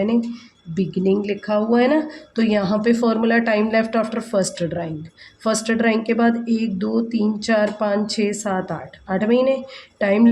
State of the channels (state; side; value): identical; both; correlation 1.00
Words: बिगनिंग लिखा हुआ है ना। तो यहाँ पे formula time left after first drawing, first drawing के बाद 1 2 3 4 5 6 7 8, 8 महीने। Time